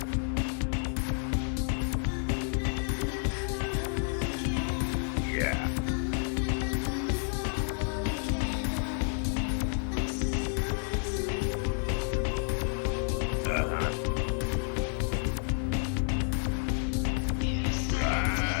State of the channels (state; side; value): silent; right; 58 dB below the other